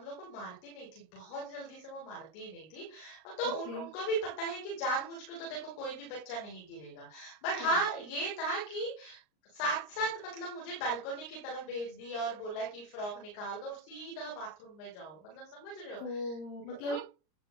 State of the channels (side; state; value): right; late; 39 ms